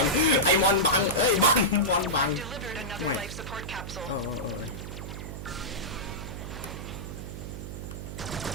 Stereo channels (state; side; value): noise; right; hum, 8 dB below the sound